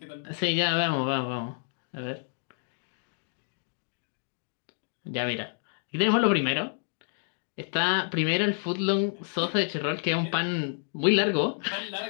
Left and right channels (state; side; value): silent; right; 58 dB below the other